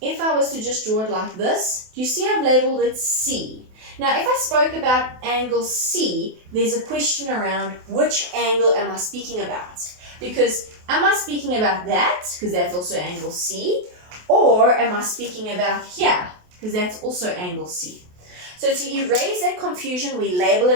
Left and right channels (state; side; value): late; left; 28 ms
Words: I was to just draw it like this, do you see I've labeled it C? Now, if I spoke about angle C, there's a question around which angle am I speaking about? Because am I speaking about that, because that's also angle C, or am I speaking about here, because that's also angle C? So to erase that confusion, we label